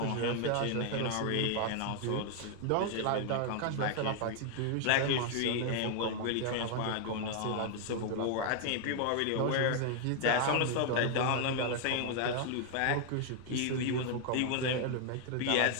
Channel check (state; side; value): different; both; correlation 0.00